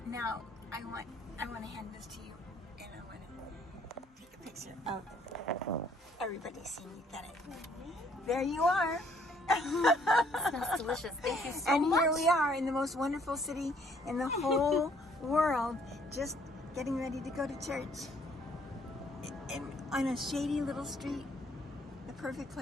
now I want to hand this to you, and I want to take a picture. picture of everybody seeing you got it. There you are. Smells delicious. Thank you so And much. here we are in the most wonderful city in the whole world, just getting ready to go to church. On a shady little street, the perfect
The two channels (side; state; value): both; normal; correlation 0.63